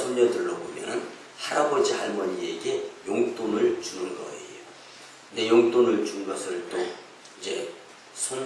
보면은 할아버지, 할머니에게 용돈을 주는 거예요. 근데 용돈을 준 것을 또 이제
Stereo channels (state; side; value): identical; both; correlation 1.00